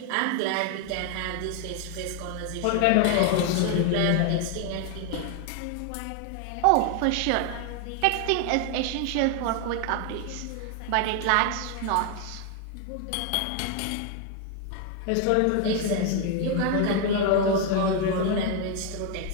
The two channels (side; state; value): both; different; correlation 0.00